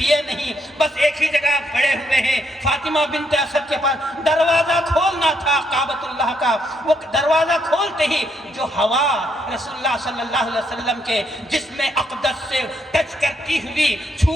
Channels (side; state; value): both; normal; correlation 0.75